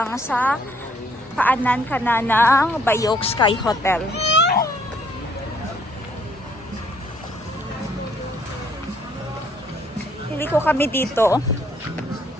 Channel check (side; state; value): both; normal; correlation 0.65